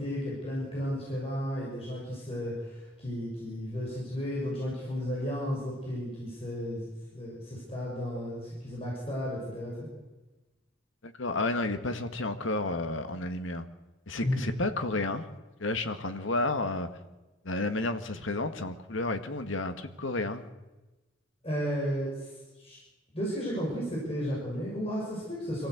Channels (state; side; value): normal; both; correlation 0.38